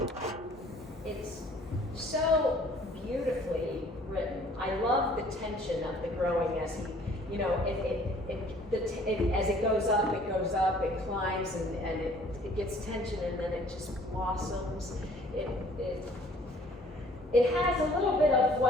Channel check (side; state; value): both; normal; correlation 0.55